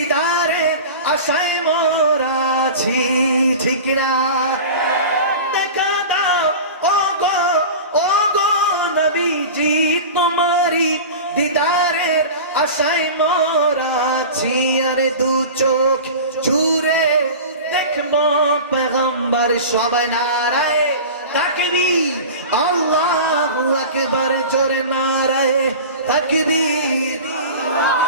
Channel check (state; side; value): inverted; both; correlation -0.33